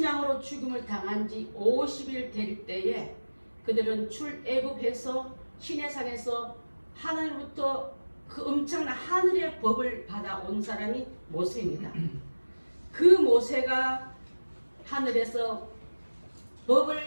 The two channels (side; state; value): both; inverted; correlation -1.00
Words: 양으로 죽음을 당한 지 50일 될 때에 그들은 출애굽해서 시내산에서 하나님부터 그 엄청난 하늘의 법을 받아온 사람이 모세입니다. 그 모세가 하늘에서